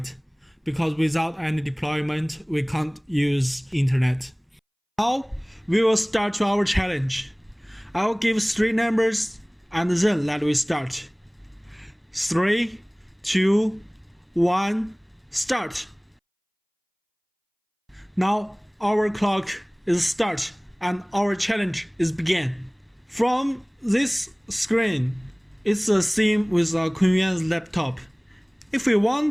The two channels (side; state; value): both; identical; correlation 1.00